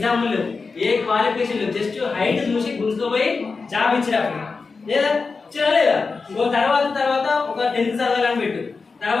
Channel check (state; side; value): quieter; right; 4.5 dB